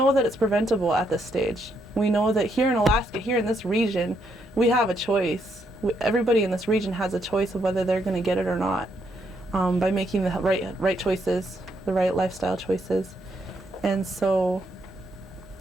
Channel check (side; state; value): both; normal; correlation 0.75